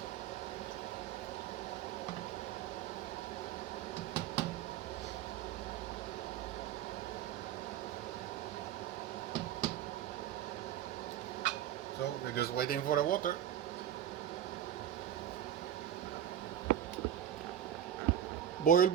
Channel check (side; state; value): left; quieter; 10.4 dB